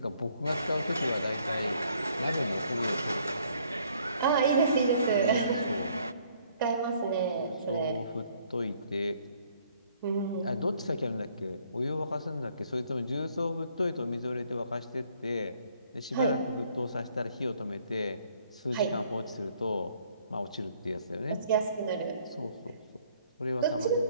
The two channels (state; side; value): inverted; both; correlation -0.64